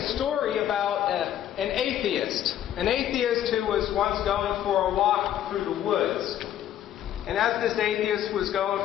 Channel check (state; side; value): quieter; right; 11.2 dB